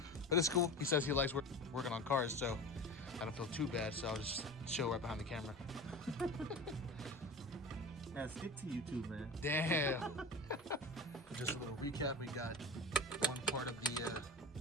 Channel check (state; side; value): normal; both; correlation 0.31